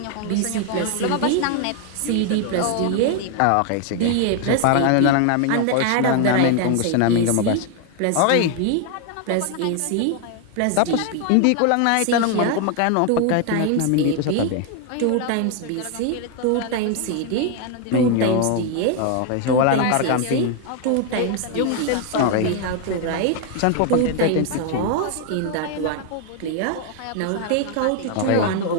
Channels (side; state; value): both; different; correlation 0.00